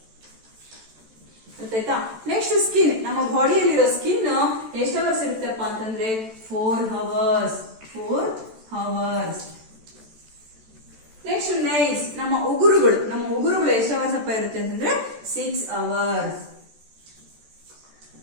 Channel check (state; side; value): late; left; 14 ms